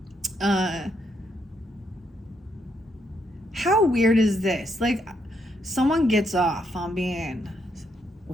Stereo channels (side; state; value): both; normal; correlation 0.76